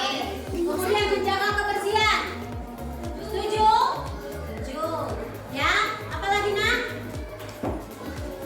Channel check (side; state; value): both; identical; correlation 1.00